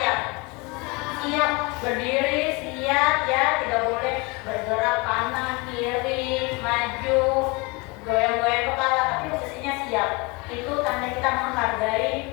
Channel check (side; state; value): right; quieter; 26.9 dB